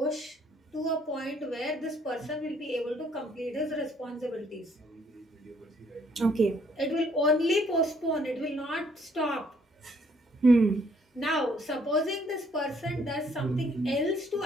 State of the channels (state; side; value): normal; both; correlation 0.65